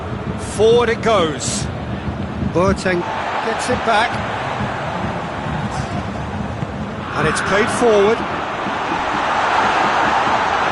forward it goes. Boateng gets it back. And it's played forward.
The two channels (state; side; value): identical; both; correlation 1.00